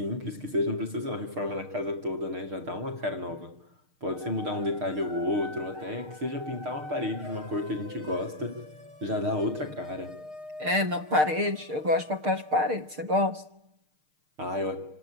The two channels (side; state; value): left; late; 6.6 ms